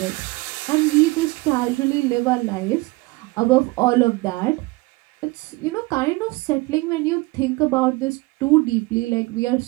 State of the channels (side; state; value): left; quieter; 23.1 dB